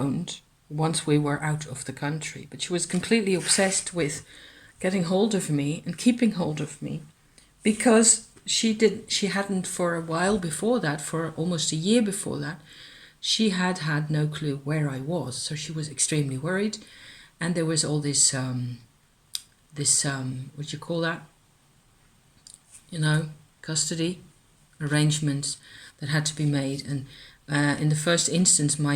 once we were out of the country, but she was completely obsessed with getting hold of me and keeping hold of me, because she hadn't, for a while before that, for almost a year before that, she had had no clue where I was, so she was extremely worried. And there was all this what do you call that, custody arrangements that had to be made. And in the first instance,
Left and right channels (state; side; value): identical; both; correlation 1.00